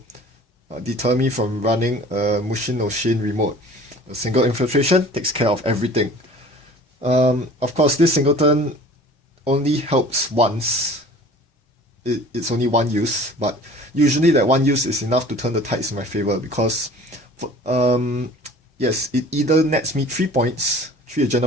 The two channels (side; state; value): both; normal; correlation 0.46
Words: deter me from running a Mushin no Shin remote. A single infiltration takes care of everything. Of course, this singleton only helps once. It's only one use, but usually that one use is enough to turn the tides in my favor because, yes, it either nets me 3 points, 3